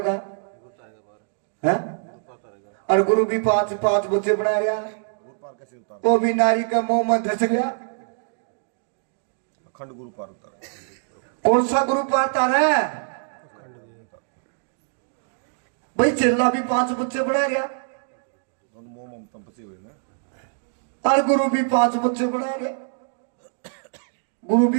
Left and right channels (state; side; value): silent; left; digital silence